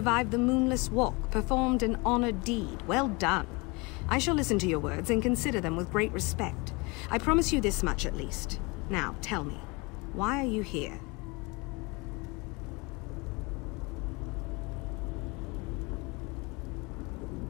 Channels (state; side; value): quieter; right; 26.9 dB